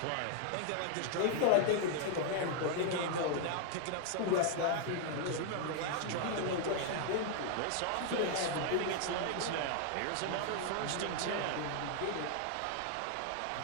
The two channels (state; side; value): different; both; correlation 0.00